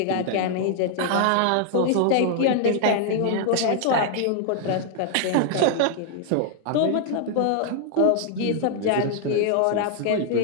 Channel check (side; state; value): both; different; correlation 0.00